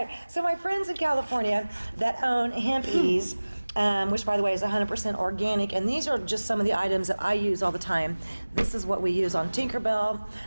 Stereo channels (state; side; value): inverted; both; correlation -1.00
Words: so my friends in California that own Hempies, which by the way is 100% organic, and these are just some of the items that I use all the time. This is what we use on Tinkerbell,